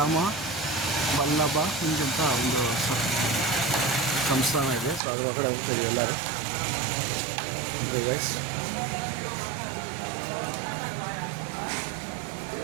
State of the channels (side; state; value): left; drops out; at 5.0 s